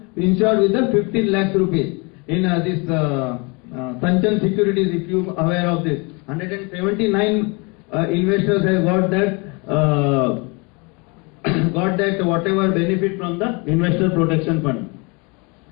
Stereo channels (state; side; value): quieter; right; 29.9 dB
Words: insured with the 15 lakhs rupees. In this Sanchan Securities, if you are aware of this, 179 investors have got that whatever benefit from the Investor Protection Fund.